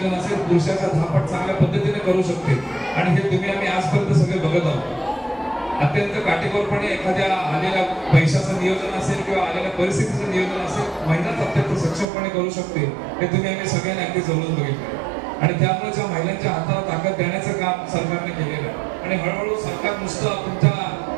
असेल पुरुषाचा 10 पट चांगल्या पद्धतीने करू शकते. आणि हे तुम्ही आम्ही आजपर्यंत सगळे बघत आहोत. अत्यंत काटेकोरपणे एखाद्या आलेल्या पैशाचं नियोजन असेल किंवा आलेल्या परिस्थितीचं नियोजन असेल महिलाच अत्यंत सक्षमपणे करू शकते, हे तुम्ही आम्ही सगळ्यांनी अगदी जवळून बघितलं. आणि त्यामुळे ज्या महिलांच्या हाताला ताकद देण्याचं काम सरकारने केलेलं आहे. आणि हळूहळू सरकार नुसतं तुमच्या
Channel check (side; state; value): left; drops out; at 12.1 s